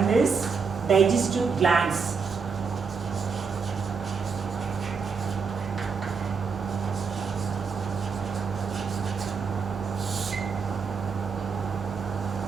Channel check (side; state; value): left; quieter; 5.5 dB